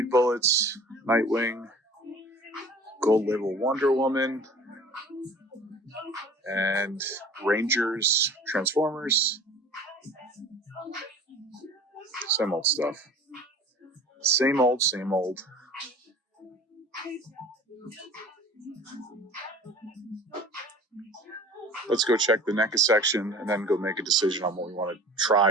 Bullets, Nightwing, Gold Label Wonder Woman, and Rangers, Transformers. Same old stuff. Same old, same old. Let's go check the NECA section and then go make a decision on what we want to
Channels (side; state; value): both; normal; correlation 0.44